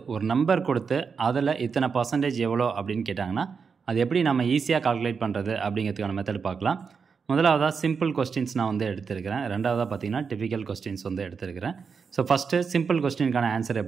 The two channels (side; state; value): left; quieter; 5.7 dB